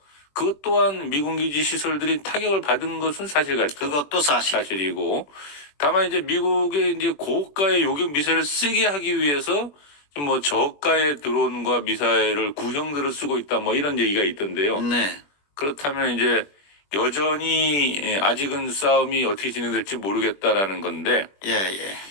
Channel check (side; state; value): right; late; 21 ms